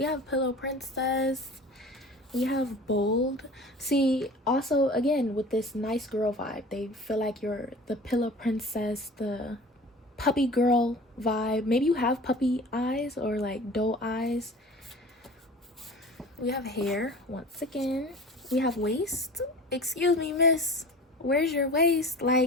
have Pillow Princess. We have Bold. See, also again with this nice girl vibe, they feel like you're the Pillow Princess, the puppy girl vibe. Maybe you have puppy eyes or like doe eyes. We have hair once again. We have waist. Excuse me, miss, where's your waist?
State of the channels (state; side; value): normal; both; correlation 0.39